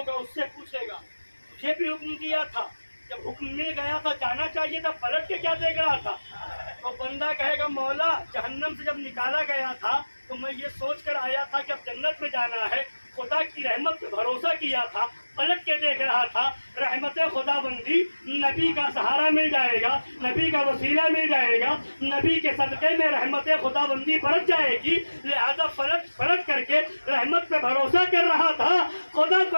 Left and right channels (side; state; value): both; inverted; correlation -1.00